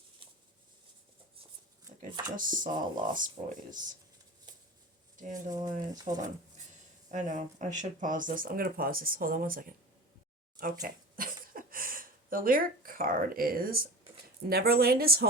Like I just saw Lost Boys. Dandelions. Hold on. I know. I should pause this. I'm going to pause this. Hold on one second. Okay. The lyric card is Neverland is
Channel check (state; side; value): normal; both; correlation 0.34